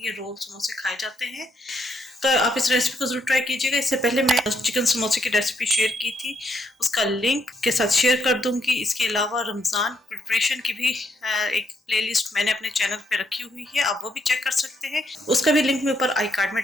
ये रोल समोसे खाए जाते हैं। तो आप इस रेसिपी को ज़रूर ट्राई कीजिएगा। इससे पहले मैं चिकन समोसे की रेसिपी शेयर की थी, उसका लिंक के साथ शेयर कर दूंगी। इसके अलावा रमज़ान प्रिपरेशन की भी एक प्लेलिस्ट मैंने अपने चैनल पे रखी हुई है, आप वो भी चेक कर सकते हैं। उसका भी लिंक मैं ऊपर आई कार्ड में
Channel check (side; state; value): both; normal; correlation 0.76